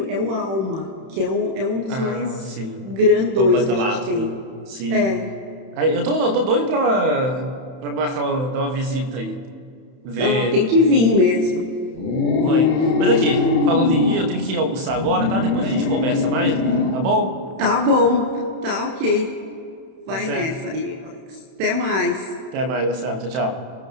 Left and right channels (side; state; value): left; late; 31 ms